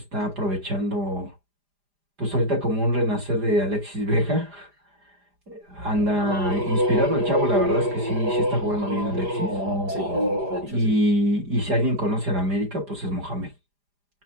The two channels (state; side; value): late; left; 4.9 ms